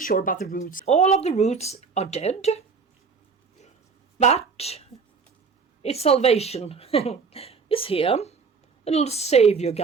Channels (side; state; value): left; quieter; 5.1 dB